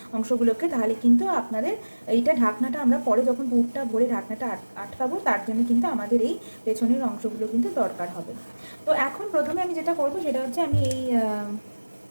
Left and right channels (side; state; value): both; inverted; correlation -1.00